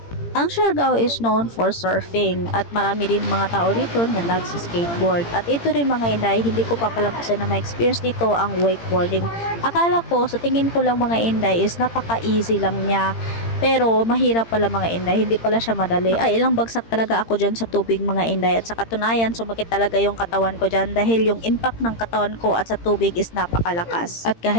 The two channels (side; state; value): right; late; 18 ms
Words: Ang Siargao is known for surfing at marami din mga tao dito na nagsi-skateboard. At ito rin mga Inday, hindi ko papalampasan na ma-experience dito ang wakeboarding. Akala ko, sa tingin ko lang mga Inday is napaka-easy lang niya. Pero mahirap pala mga Inday, hindi pala siya madali. Ay, ilang bagsak talaga ako dyan sa tubig mga Inday. At sa katunayan, sumakit talaga yung katawan ko dyan dahil yung impact ng katawan ko at sa tubig is napakalakas. At